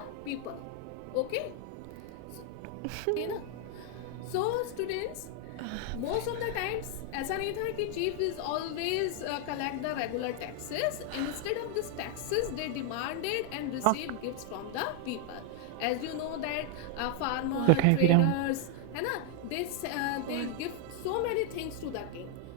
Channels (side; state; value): both; different; correlation 0.00